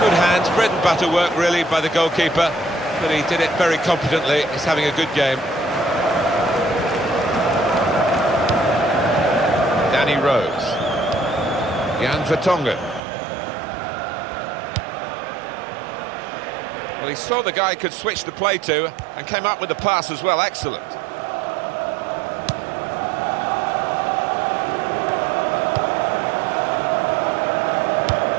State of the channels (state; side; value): drops out; left; at 13.0 s